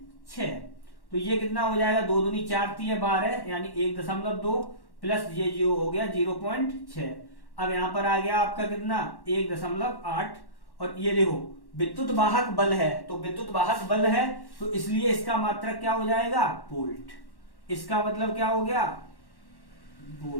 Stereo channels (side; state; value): right; late; 1.1 ms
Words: तो ये कितना हो जाएगा, 2 दूनी 4 3 12, यानी 1.2 प्लस ये जो हो गया 0.6। अब यहां पर आ गया आपका कितना 1.8, और ये देखो विद्युत वाहक बल है, तो विद्युत वाहक बल है तो इसलिए इसका मात्रक क्या हो जाएगा, वोल्ट। इसका मतलब क्या हो गया,